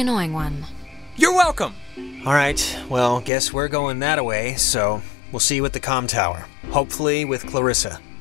one. You're welcome! Alright, well, guess we're going that way, so we'll see you at the comm tower. Hopefully with Clarissa.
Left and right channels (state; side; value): drops out; right; at 3.3 s